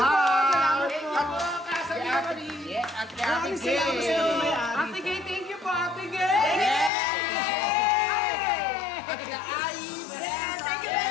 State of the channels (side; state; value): right; drops out; at 6.9 s